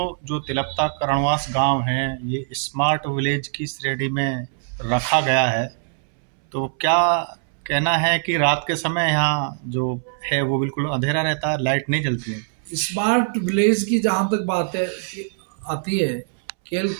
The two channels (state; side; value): silent; left; 64 dB below the other